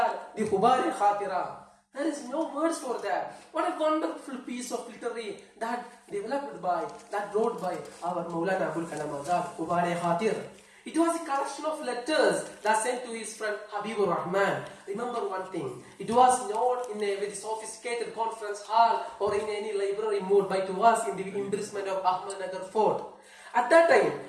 the Hubari Khatira, there is no words for that. What a wonderful piece of literary that wrote by our Maulana Abul Kalam Azad, Hubari Khatir. It was a collection of letters that sent to his friend Habibur Rahman. Remember one thing, it was not in a very sophisticated conference hall or in any library mode, but it was in the imprisonment of Ahmednagar Fort. At that time,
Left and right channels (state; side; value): identical; both; correlation 1.00